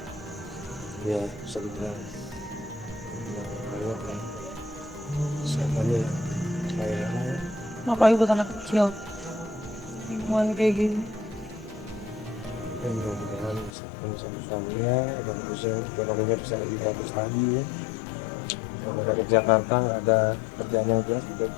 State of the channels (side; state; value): right; drops out; at 13.7 s